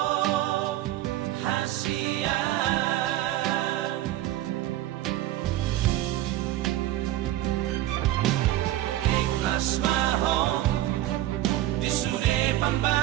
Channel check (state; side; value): quieter; left; 14.6 dB